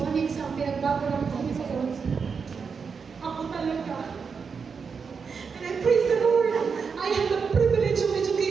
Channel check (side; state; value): left; quieter; 5.7 dB